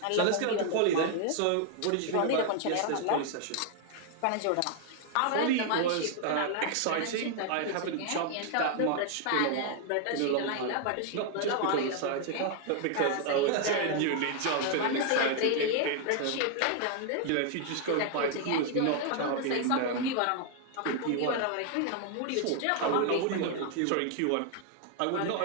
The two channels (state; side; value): different; both; correlation 0.00